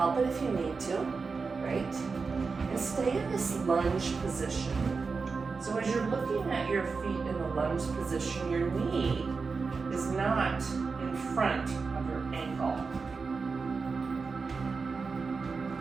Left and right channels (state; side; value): quieter; left; 4.7 dB